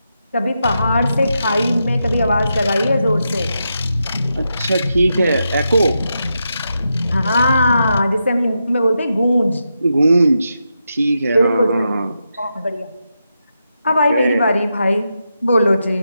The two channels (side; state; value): both; inverted; correlation -0.86